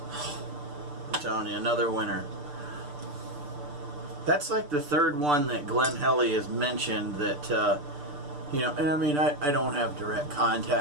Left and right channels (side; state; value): left; late; 6.8 ms